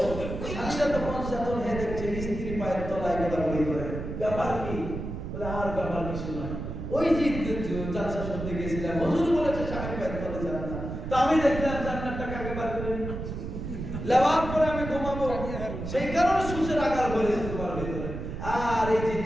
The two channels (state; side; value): noise; right; rumble, 6 dB below the sound